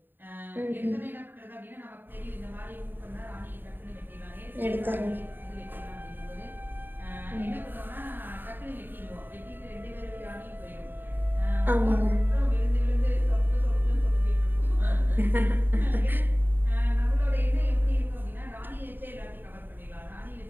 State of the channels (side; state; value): left; late; 0.093 ms